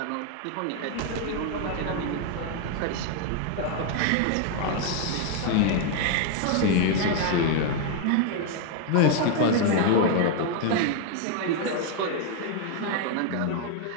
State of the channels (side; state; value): both; different; correlation 0.01